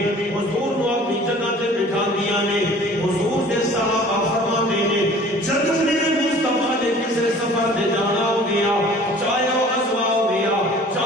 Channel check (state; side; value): normal; both; correlation 0.48